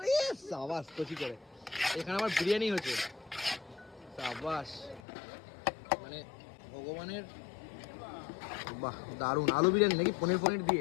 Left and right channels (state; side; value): drops out; right; at 5.0 s